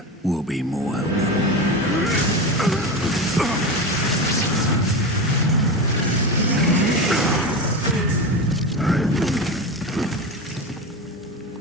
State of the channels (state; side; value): normal; both; correlation 0.22